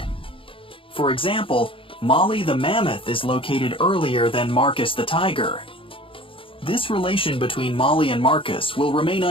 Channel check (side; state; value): right; late; 0.26 ms